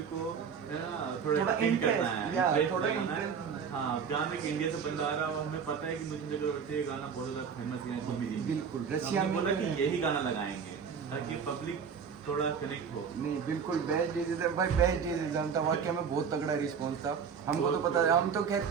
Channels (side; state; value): left; quieter; 6.6 dB